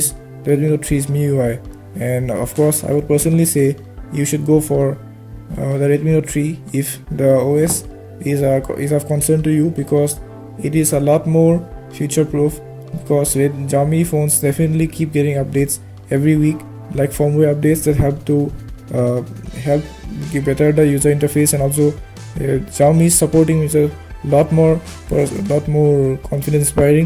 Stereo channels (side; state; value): both; identical; correlation 1.00